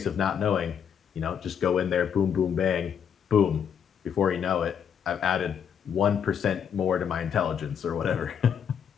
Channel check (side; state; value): right; quieter; 8.0 dB